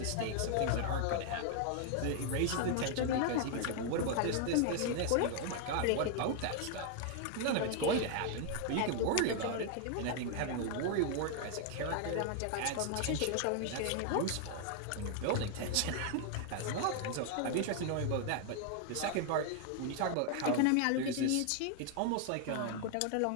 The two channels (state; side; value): different; both; correlation 0.00